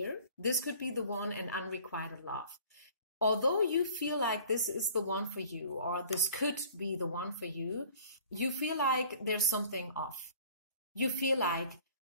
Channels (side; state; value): both; inverted; correlation -0.49